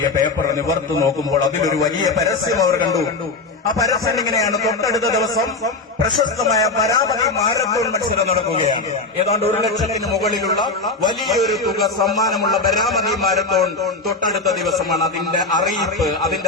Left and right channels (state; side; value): quieter; right; 3.6 dB